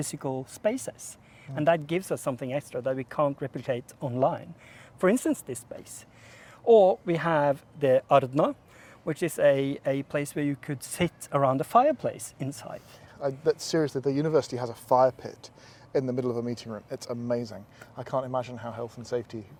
spaces. And that gives us something extra that we can't replicate online. For instance, this space. Or we have the Arna, which is a place where you could sit around a fireplace inside. Seriously, the university has a fire pit in the middle of a meeting room. It's amazing. I can't imagine how health and safety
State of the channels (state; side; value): identical; both; correlation 1.00